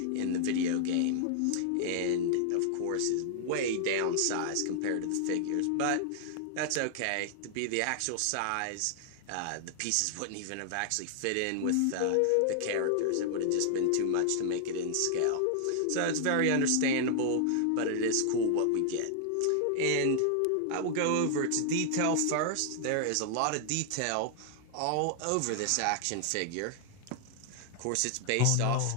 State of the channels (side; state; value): both; different; correlation 0.00